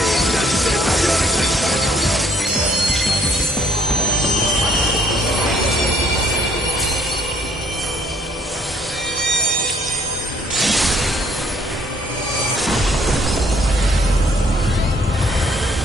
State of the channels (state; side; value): normal; both; correlation 0.64